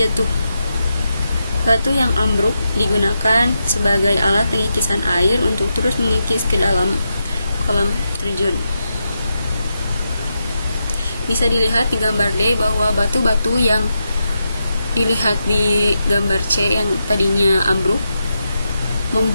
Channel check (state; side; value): inverted; both; correlation -0.86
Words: Batu yang ambruk digunakan sebagai alat pengikisan air untuk terus mengikis ke dalam kolam terjun. Bisa dilihat di gambar D bahwa batu-batu yang dilihat di gambar C yang tadinya ambruk